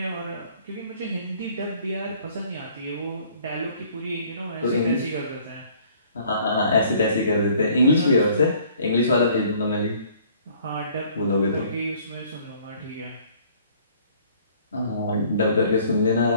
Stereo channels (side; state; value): both; inverted; correlation -0.57